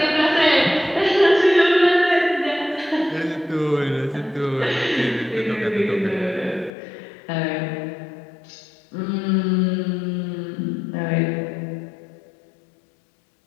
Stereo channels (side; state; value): right; drops out; at 6.7 s